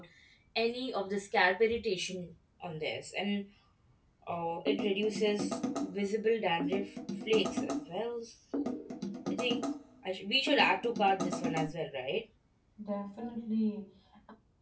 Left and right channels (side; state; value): both; identical; correlation 1.00